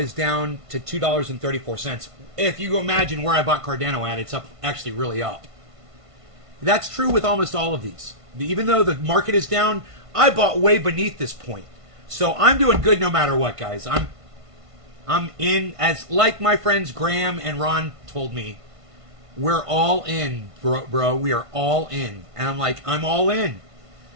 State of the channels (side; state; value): left; late; 1.5 ms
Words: down to $2.34. If you imagine where I bought Cardano at, it's up, actually really up. That's true with almost all of these. Even though the market is down, I bought way beneath this point. So I'm doing good no matter what, guys. I'm in, as like my friends Graham and Ron told me, we're all in, bro. We are all in. And I'm like, I'm all in.